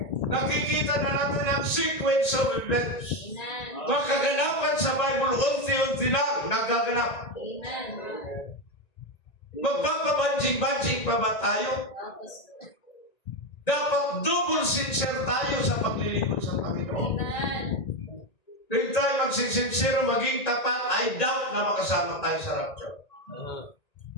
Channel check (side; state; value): right; late; 1.9 ms